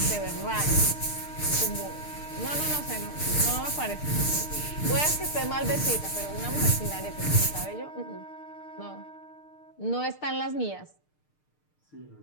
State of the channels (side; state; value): right; late; 6.6 ms